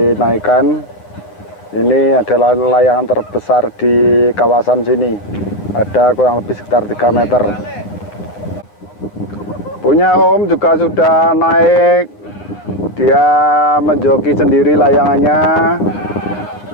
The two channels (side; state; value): right; late; 9.3 ms